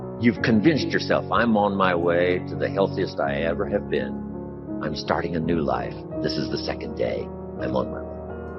You've convinced yourself, I'm on my way to the healthiest I ever have been. I'm starting a new life. This is the 2nd day. I'm on my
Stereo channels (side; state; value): both; identical; correlation 1.00